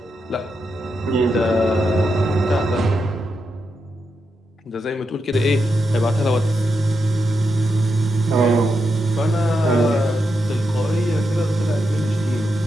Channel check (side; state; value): both; normal; correlation 0.85